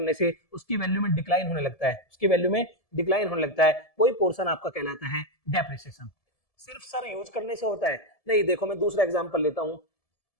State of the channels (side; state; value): right; late; 1.7 ms